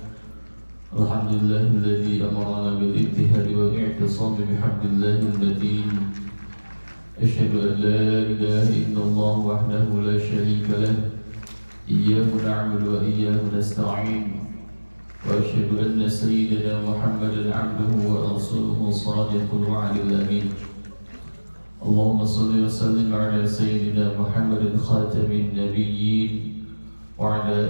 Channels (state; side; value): inverted; both; correlation -1.00